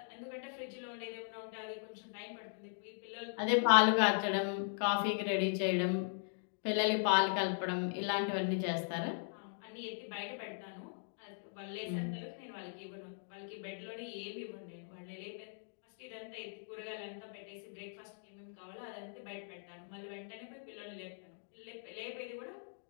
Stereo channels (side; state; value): right; silent; digital silence